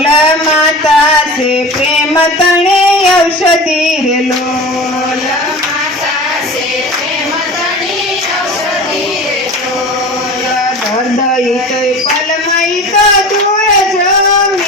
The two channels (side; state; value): both; normal; correlation 0.34